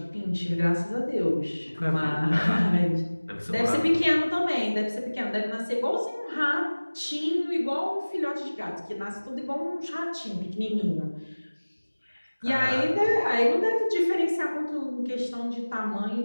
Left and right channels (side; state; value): both; inverted; correlation -1.00